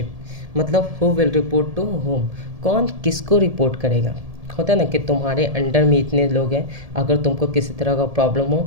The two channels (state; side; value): late; left; 1.7 ms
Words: मतलब who will report to whom, कौन किसको रिपोर्ट करेगा। होता है ना कि तुम्हारे अंडर में इतने लोग हैं, अगर तुमको किसी तरह का प्रॉब्लम हो